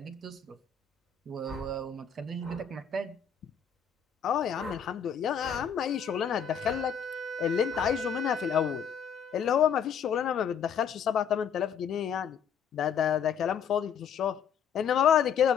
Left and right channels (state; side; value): quieter; right; 7.4 dB